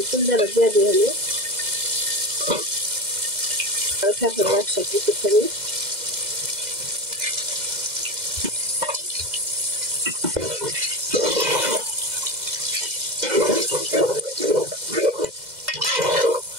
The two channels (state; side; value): late; left; 2.0 ms